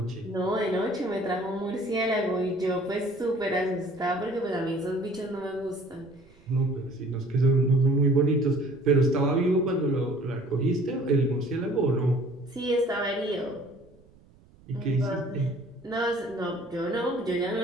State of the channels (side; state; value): right; noise; rumble, 27 dB below the sound